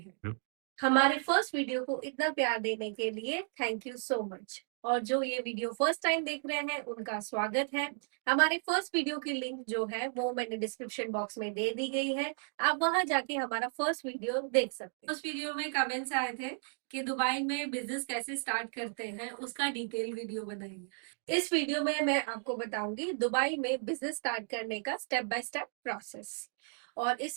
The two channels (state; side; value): silent; left; 55 dB below the other